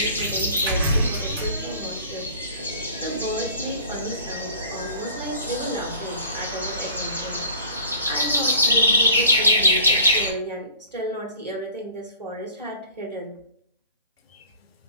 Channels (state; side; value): inverted; both; correlation -0.47